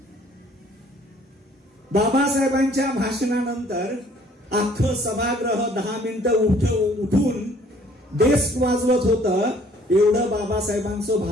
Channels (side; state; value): both; normal; correlation 0.58